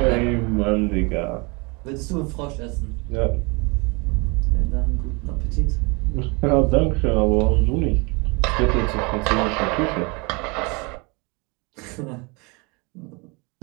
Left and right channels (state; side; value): quieter; left; 29.4 dB